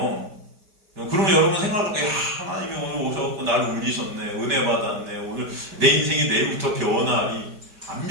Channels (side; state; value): left; late; 5.1 ms